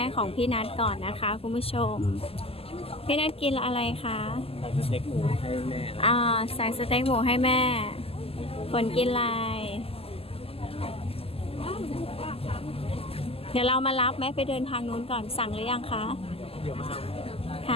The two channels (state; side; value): late; right; 0.28 ms